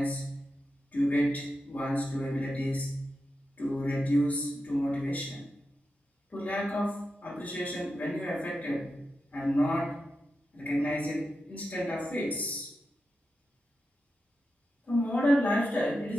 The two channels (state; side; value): normal; both; correlation 0.89